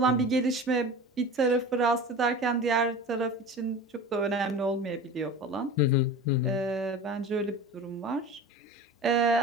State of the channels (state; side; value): normal; both; correlation 0.34